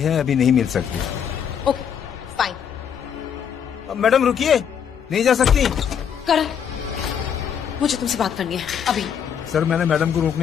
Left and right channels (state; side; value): quieter; right; 8.0 dB